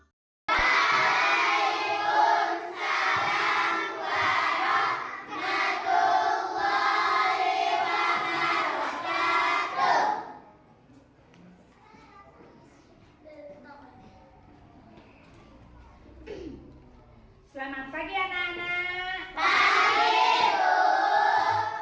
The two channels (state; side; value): identical; both; correlation 1.00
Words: Selamat pagi anak-anak. Pagi, Bu.